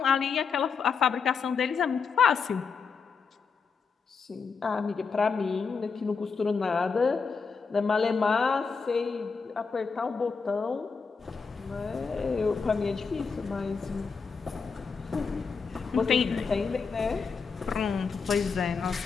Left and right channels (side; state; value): right; quieter; 5.4 dB